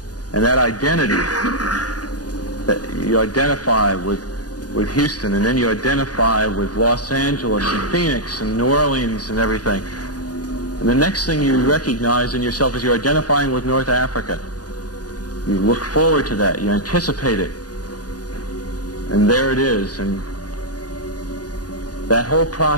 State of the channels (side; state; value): right; late; 0.68 ms